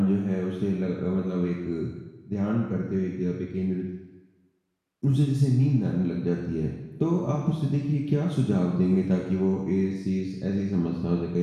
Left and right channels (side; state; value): both; identical; correlation 1.00